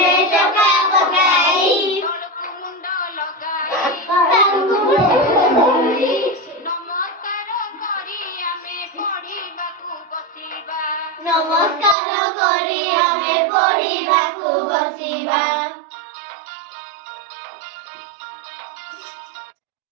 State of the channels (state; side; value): drops out; left; at 12.0 s